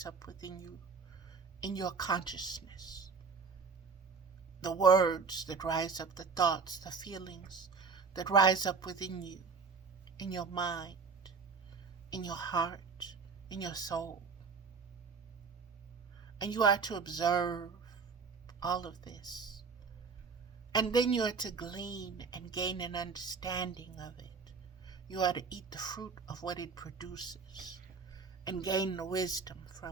up within you in your consciousness. The words that rise up, the thoughts, the feelings that rise up within you, in your mind, in your heart, in your soul. And you are to observe all of this. And then you are to glean and gain an understanding of it. You are to eat the fruit of what it produces and gain the wisdom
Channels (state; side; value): quieter; left; 5.1 dB